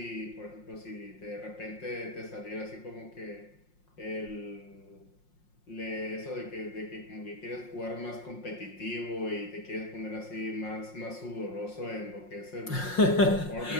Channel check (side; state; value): right; late; 5.6 ms